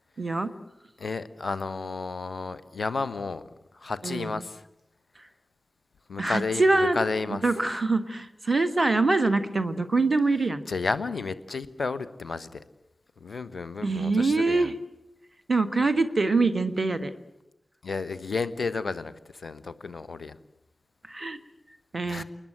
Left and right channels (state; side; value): normal; both; correlation 0.90